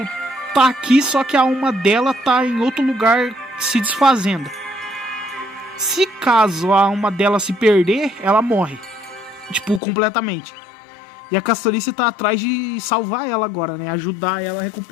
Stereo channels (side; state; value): right; drops out; at 9.8 s